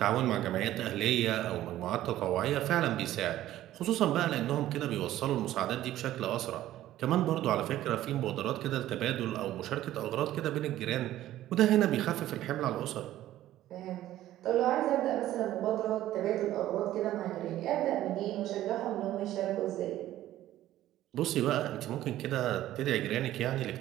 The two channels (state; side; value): quieter; left; 13.9 dB